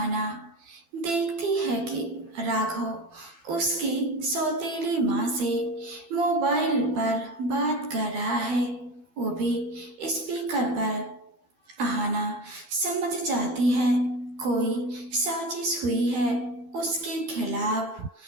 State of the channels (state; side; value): late; left; 12 ms